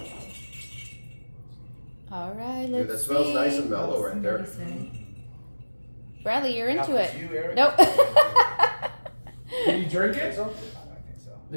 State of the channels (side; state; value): both; inverted; correlation -1.00